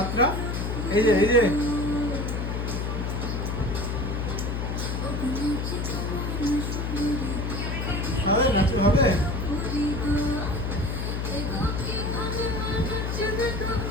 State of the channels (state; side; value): noise; left; hum, 2 dB below the sound